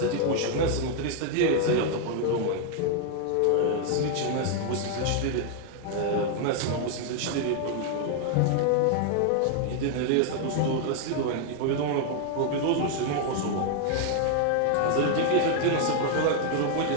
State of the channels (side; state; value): both; different; correlation 0.00